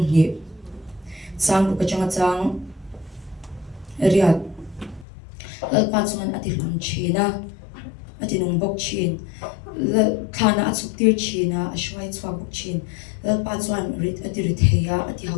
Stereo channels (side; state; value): right; drops out; at 5.1 s